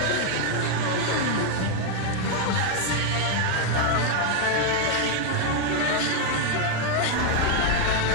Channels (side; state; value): both; different; correlation 0.00